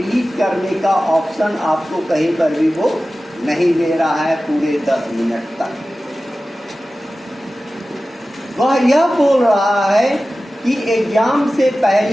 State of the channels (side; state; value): both; normal; correlation 0.95